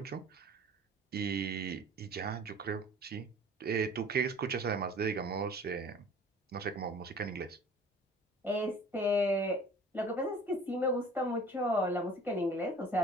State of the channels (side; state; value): both; normal; correlation 0.47